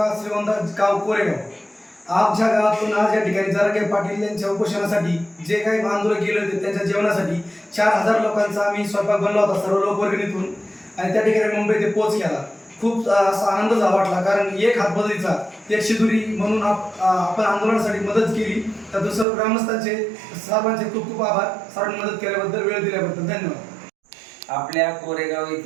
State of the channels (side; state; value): left; drops out; at 19.2 s